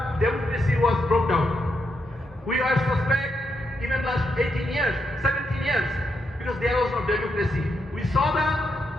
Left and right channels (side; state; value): both; normal; correlation 0.81